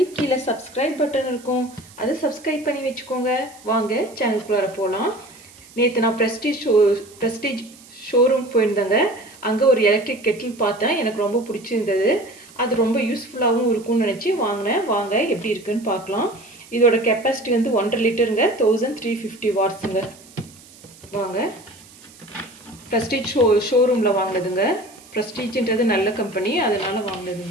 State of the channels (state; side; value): noise; right; hiss, 23 dB below the sound